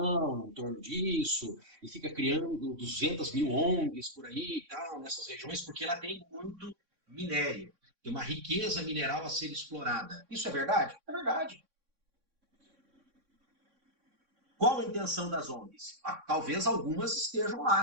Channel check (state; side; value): late; left; 3.6 ms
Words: em torno disso? E fica criando 200 mil ONGs por aí e tal, nessas regiões, porque ela tem muito minério. Tem uma riqueza mineral a ser explorada. Isso é verdade? É verdade. Qual a intenção das ONGs? Talvez algumas estejam lá,